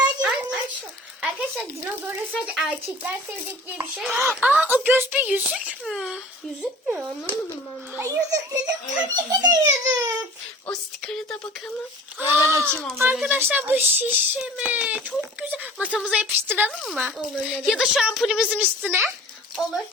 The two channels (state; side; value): normal; both; correlation 0.44